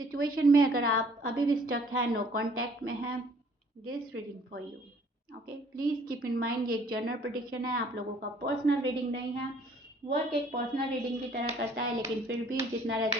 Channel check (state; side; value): normal; both; correlation 0.58